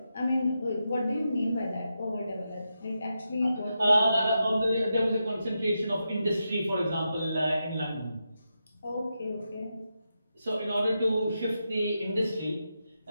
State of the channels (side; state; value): both; inverted; correlation -0.87